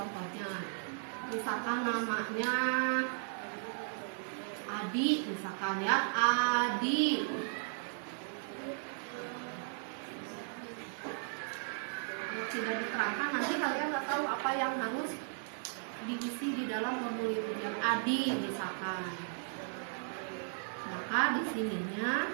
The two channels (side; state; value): left; silent; digital silence